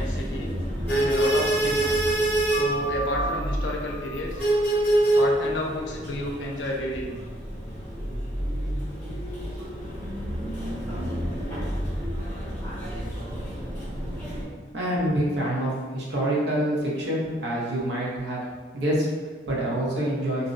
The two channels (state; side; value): normal; both; correlation 0.65